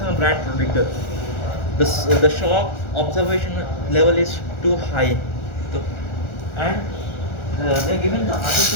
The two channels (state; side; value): late; right; 1.4 ms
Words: brand protector. The shock observation level is too high, so, and they are given the